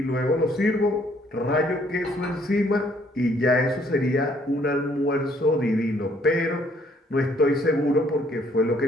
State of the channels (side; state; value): both; normal; correlation 0.64